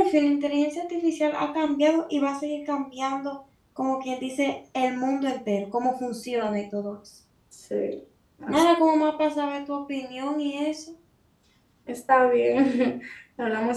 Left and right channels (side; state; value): both; identical; correlation 1.00